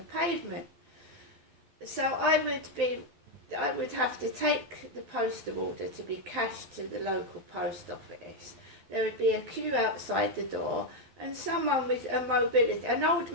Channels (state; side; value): late; left; 12 ms